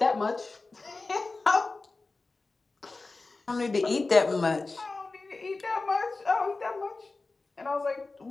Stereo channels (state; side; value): quieter; right; 3.6 dB